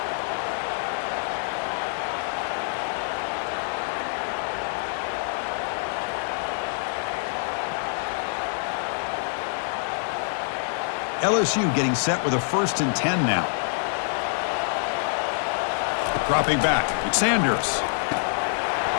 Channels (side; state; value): right; silent; 61 dB below the other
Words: LSU getting set with a 1st and 10 now. Dropping back, it's Sanders.